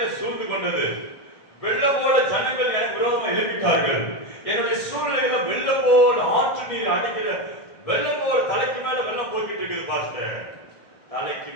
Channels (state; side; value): late; right; 1.6 ms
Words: சூழ்ந்து கொண்டது. வெள்ளம் போல ஜனங்கள் எனக்கு விரோதமா எழுப்பிட்டார்கள். என்னுடைய சூழ்நிலையில வெள்ளம் போல ஆற்று நீர் அடிக்கிற வெள்ளம் போல தலைக்கு மேல வெள்ளம் போய்கிட்டு இருக்குது பாஸ்டர். தலைக்கு